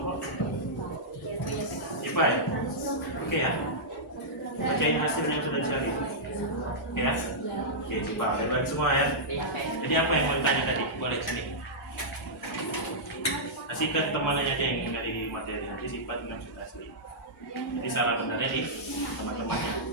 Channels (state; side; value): normal; both; correlation -0.12